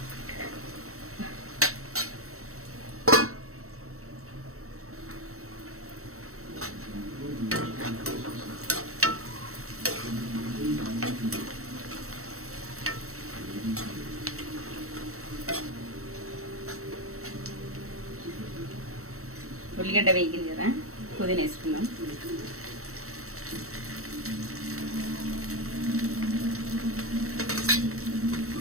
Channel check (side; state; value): left; late; 0.64 ms